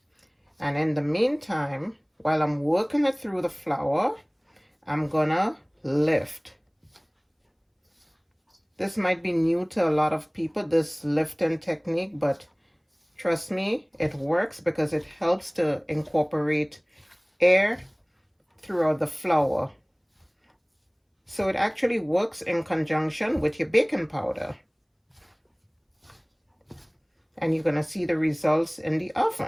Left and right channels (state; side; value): identical; both; correlation 1.00